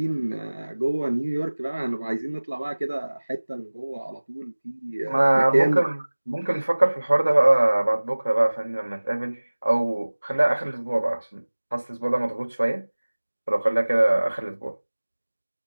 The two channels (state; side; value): inverted; both; correlation -1.00